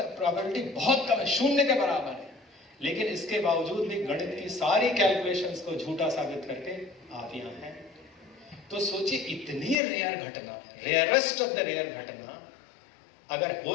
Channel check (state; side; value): drops out; right; at 9.8 s